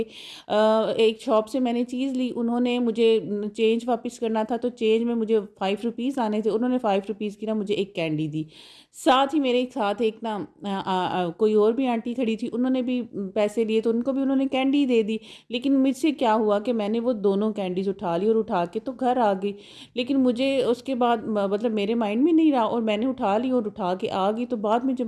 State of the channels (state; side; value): identical; both; correlation 1.00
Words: ایک شاپ سے میں نے چیز لی، انہوں نے مجھے چینج واپس کرنا تھا، تو چینج میں مجھے 5 روپیز آنے تھے، انہوں نے 5 روپیز کی نا مجھے ایک کینڈی دی، ساتھ ہی میرے ساتھ ایک نا کوئی اور بھی آنٹی کھڑی تھی، انہوں نے بھی پیسے لیے تو ان کو بھی انہوں نے کینڈی دے دی، لیکن مجھ سے کیا ہوا کہ میں نے وہ دونوں کینڈیز اٹھا لی اور اٹھا کے تو گھر آ گئی، لیکن مجھے اس کے بعد مطلب میرے مائنڈ میں نہیں رہا، اور میں نے اٹھا لی اور اٹھا کے آ گئی، تو بعد میں جب